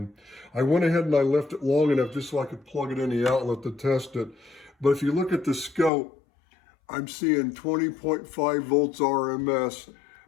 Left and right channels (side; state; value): right; drops out; at 5.9 s